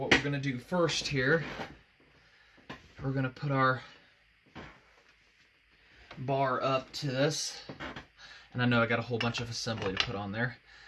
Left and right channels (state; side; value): identical; both; correlation 1.00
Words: we're going to do first here, we're going to put our bar up to this. And I know I got a whole bunch of assembly to put on there.